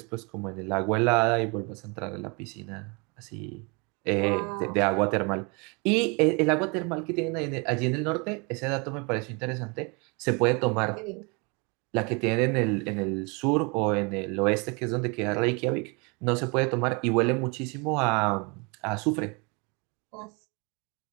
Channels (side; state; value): left; quieter; 30.9 dB